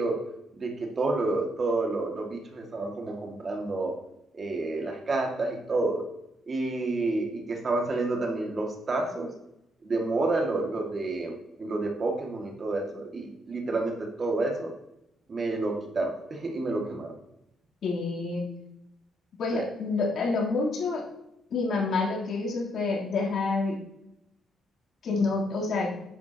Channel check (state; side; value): normal; both; correlation 0.74